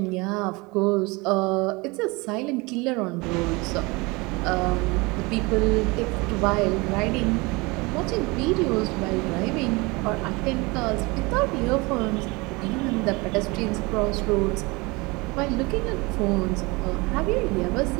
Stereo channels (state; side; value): quieter; left; 25.3 dB